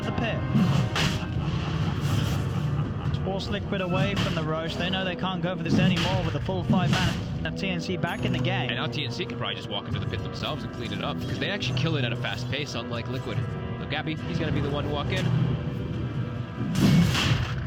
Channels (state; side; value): identical; both; correlation 1.00